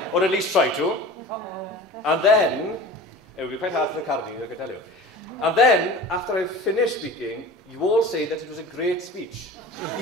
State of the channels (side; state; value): both; normal; correlation 0.38